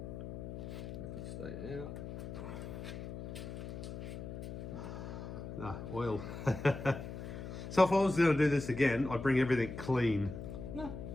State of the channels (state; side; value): noise; left; hum, 8 dB below the sound